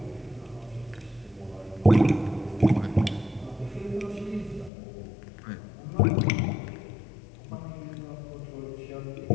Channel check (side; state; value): right; drops out; at 4.7 s